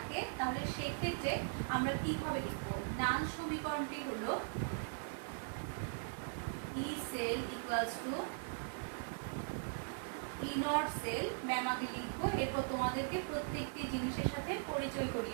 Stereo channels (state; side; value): silent; left; digital silence